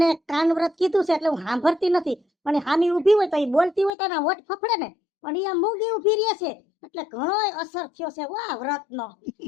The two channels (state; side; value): drops out; right; at 3.9 s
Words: કાન વ્રત કીધું છે એટલે હું સાંભળતી નથી, પણ હામી ઊભી હોય તો એ બોલતી હોય તો એના વટ ફફડે ને. પણ એ મૂંગી ઊભી રહે છે એટલે ઘણો અસર થયો છે વાહ વ્રતનો.